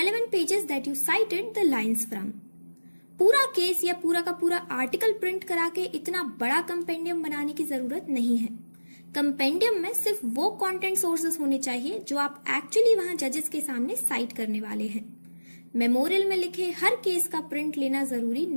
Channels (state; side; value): inverted; both; correlation -1.00